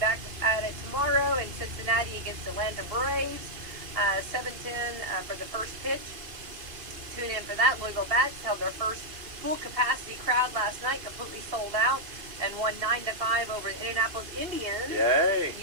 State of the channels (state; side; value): late; left; 2.5 ms